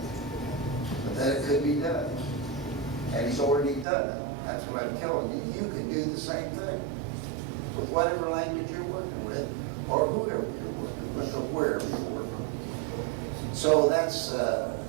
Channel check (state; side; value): drops out; left; at 3.9 s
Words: But that it could be done. And he's already done it. That's what I'm telling you. You can do the same thing with whatever language you're working with, or whoever you're working with, or wherever you're working. So that's